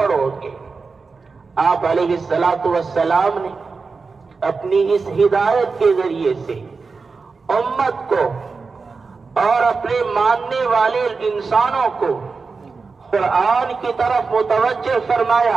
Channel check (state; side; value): quieter; left; 4.5 dB